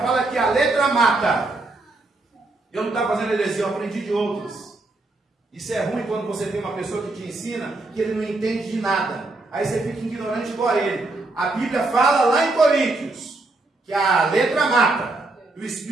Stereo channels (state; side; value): quieter; left; 3.1 dB